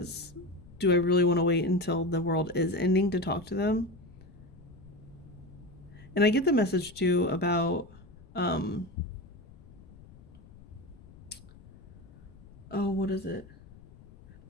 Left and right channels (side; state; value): left; noise; rumble, 21 dB below the sound